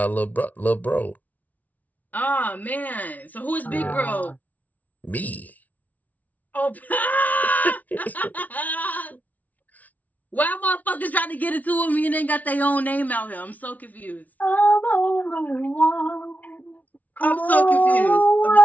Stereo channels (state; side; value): late; right; 0.074 ms